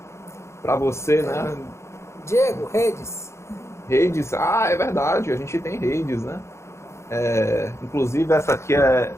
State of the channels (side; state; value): right; late; 0.13 ms